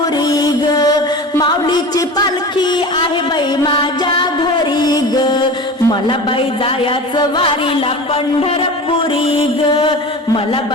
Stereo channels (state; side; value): normal; both; correlation 0.33